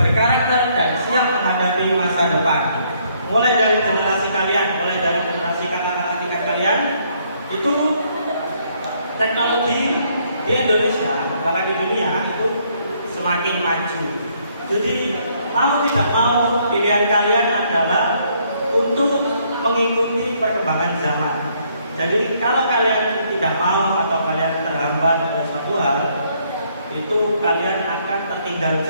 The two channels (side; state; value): both; inverted; correlation -0.69